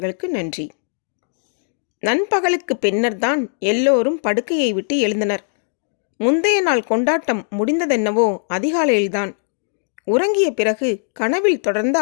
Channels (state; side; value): silent; right; digital silence